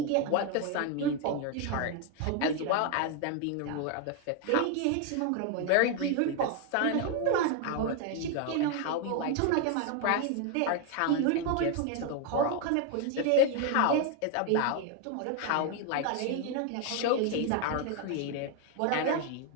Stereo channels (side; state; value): both; different; correlation 0.01